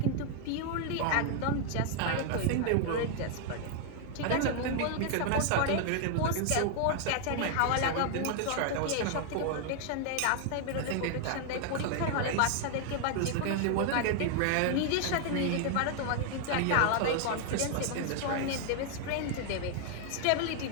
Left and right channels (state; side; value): different; both; correlation 0.00